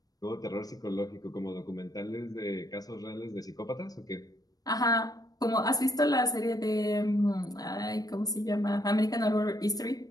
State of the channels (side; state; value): right; late; 0.18 ms